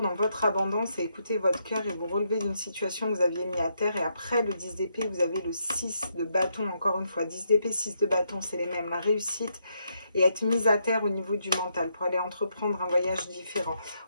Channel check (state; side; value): inverted; both; correlation -0.78